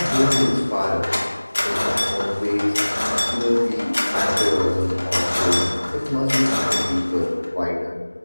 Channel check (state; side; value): inverted; both; correlation -1.00